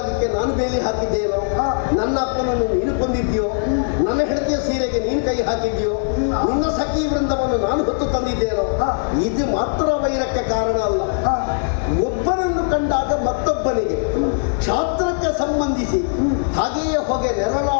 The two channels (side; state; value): right; silent; 66 dB below the other